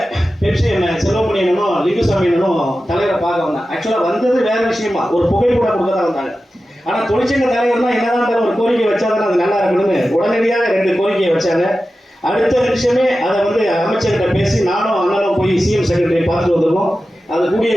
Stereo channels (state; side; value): normal; both; correlation 0.93